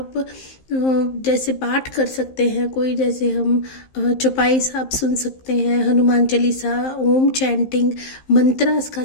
जैसे पाठ कर सकते हैं कोई, जैसे हम चौपाई साहब सुन सकते हैं, हनुमान चालीसा, ओम चैंटिंग, मंत्रास का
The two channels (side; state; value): right; late; 15 ms